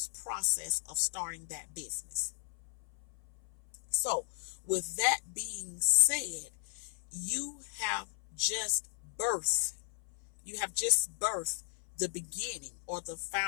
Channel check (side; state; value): right; silent; 54 dB below the other